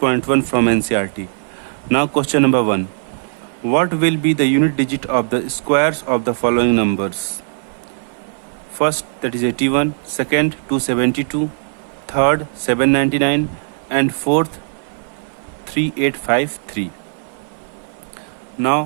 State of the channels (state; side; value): silent; left; 57 dB below the other